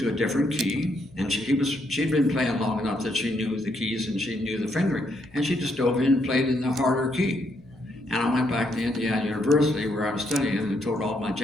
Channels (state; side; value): noise; left; hum, 26 dB below the sound